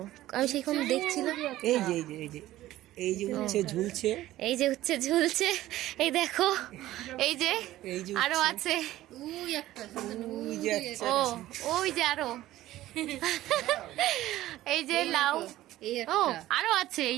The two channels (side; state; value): left; quieter; 15.2 dB